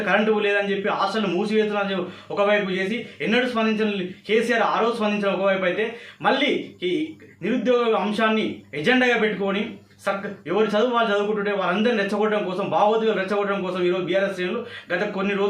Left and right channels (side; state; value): both; identical; correlation 1.00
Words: కరెంటు లేదని చెప్పి హాస్టల్ని మూసివేస్తున్న ఒకవైపు చేసి ఎన్నడూ స్పందించిన కేసీఆర్ ఆ రోజు స్పందించిన ఒకవైపు అయితే, మళ్ళీ ఈ నిరుద్యోగ అంశాన్ని ఎజెండాగా పెట్టుకొని ఎవరు చదువు వాళ్ళు చదువుకుంటుంటే వారందరిని రెచ్చగొట్టడం కోసం, భావోద్వేగాలు రెచ్చగొట్టడం కోసం ఈరోజు బీఆర్ఎస్ శ్రేణులు గత కొన్ని